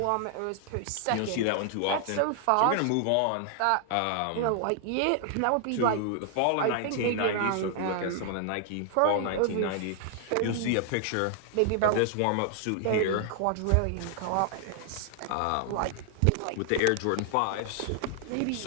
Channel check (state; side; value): different; both; correlation 0.00